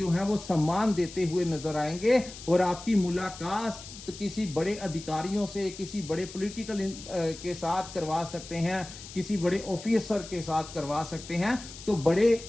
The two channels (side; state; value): left; noise; hiss, 14 dB below the sound